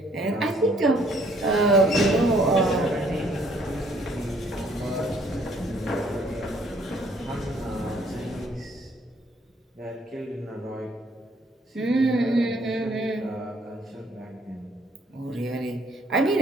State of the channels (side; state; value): both; normal; correlation 0.64